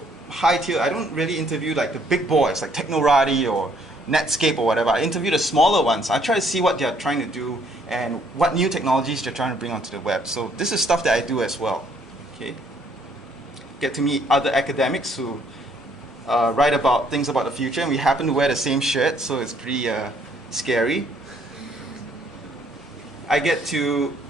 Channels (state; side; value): normal; both; correlation 0.65